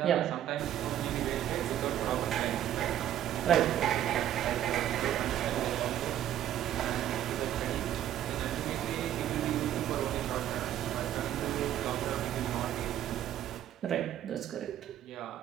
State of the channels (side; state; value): left; quieter; 11.6 dB